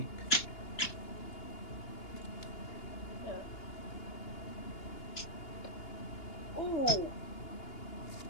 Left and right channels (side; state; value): right; late; 2.8 ms